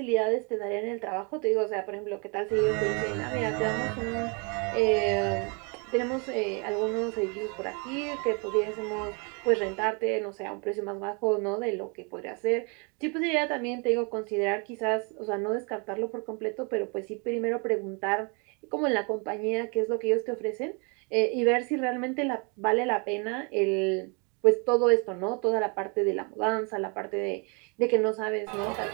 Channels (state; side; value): quieter; left; 33.8 dB